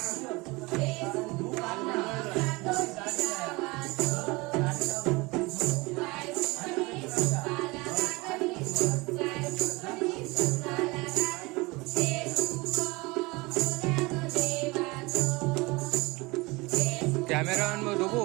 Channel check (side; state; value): left; quieter; 24.0 dB